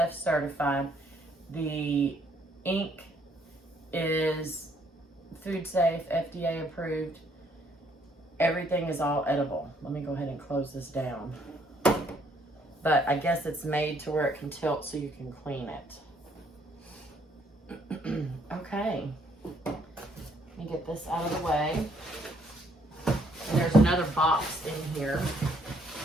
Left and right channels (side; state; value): both; normal; correlation 0.67